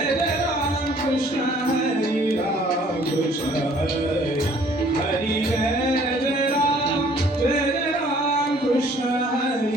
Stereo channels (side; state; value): both; normal; correlation 0.57